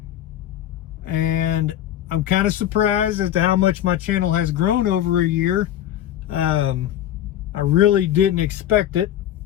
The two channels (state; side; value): quieter; right; 11.6 dB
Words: And I'm kind of surprised as to how much my channel has grown over a year. I really didn't expect it.